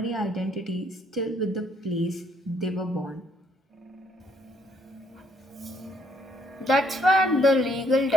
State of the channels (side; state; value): both; normal; correlation 0.68